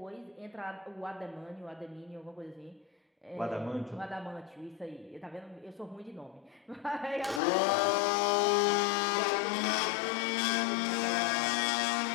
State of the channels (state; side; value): drops out; right; at 7.4 s